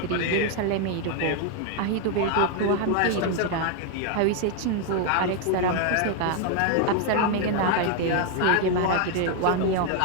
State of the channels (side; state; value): both; different; correlation 0.00